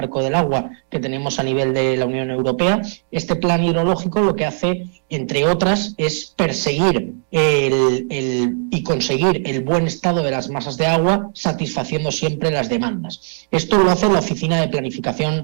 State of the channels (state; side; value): silent; left; digital silence